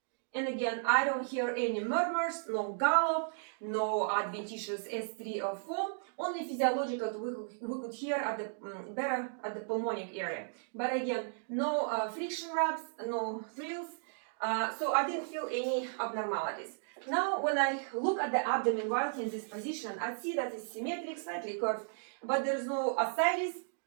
And again, I don't hear any murmurs, no gallop, no adventitious S3 or 4. Only physiological we could hear at the better at the pulmonic area. But again, no friction rubs, no thrills. So I didn't feel any abnormalities. Now, when I look at the abdomen while in this position, I see that it's symmetric, slightly curved, but there is no ascites,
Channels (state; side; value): silent; left; digital silence